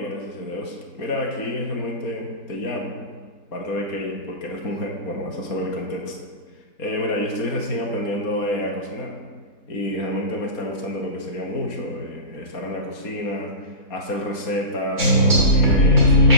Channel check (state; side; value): late; right; 4.2 ms